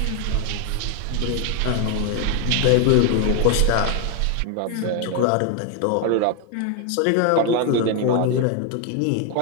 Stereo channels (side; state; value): both; different; correlation 0.00